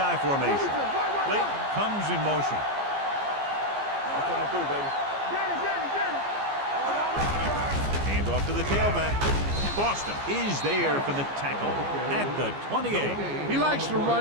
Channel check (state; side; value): late; left; 14 ms